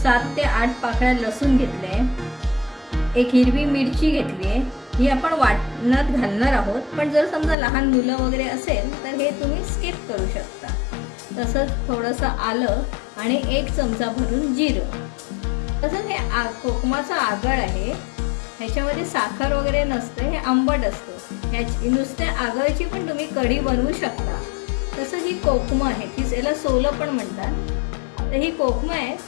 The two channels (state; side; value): drops out; right; at 7.6 s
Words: 7 ते 8 पाकळ्या लसूण घेतले, एक हिरवी मिरची घेतली आहे. ही आपण वाटणात घालणार आहोत, पण जर समजा लहान मुलं वगैरे असेल तर हे तुम्ही स्किप करू शकता. तसंच थोडंसं आलं आणि 1 चमचा भरून जिरं. तसंच हे कोकमाचा आगळ आहे. ह्याच्यामध्ये साखर वगैरे नसते, हे आंबट असतं. ह्याची नुसत्या आगळची पण तुम्ही कढी बनवू शकता. तसंच ही कोकमं आहे, ती याला सोलं पण म्हणतात. तर ही कोकमं आहे